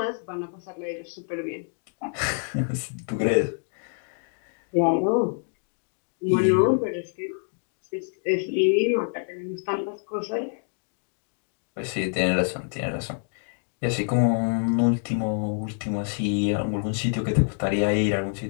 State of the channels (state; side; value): silent; right; 60 dB below the other